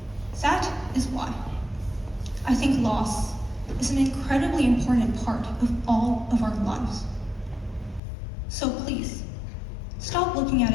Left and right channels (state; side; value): drops out; right; at 8.0 s